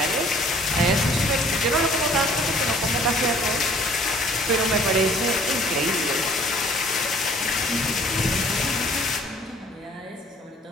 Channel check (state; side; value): normal; both; correlation 0.55